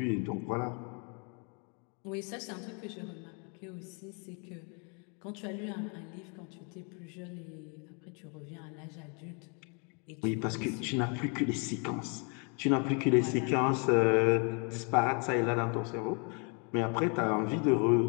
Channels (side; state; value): right; quieter; 36.1 dB